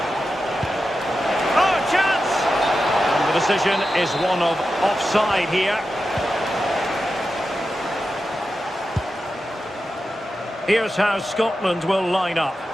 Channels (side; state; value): both; normal; correlation 0.91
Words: Oh, chance! And the decision is one of offside here. Here's how Scotland will line up.